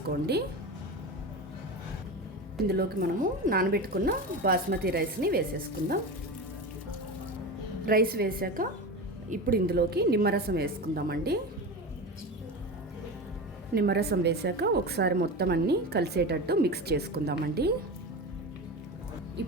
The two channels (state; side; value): normal; both; correlation 0.25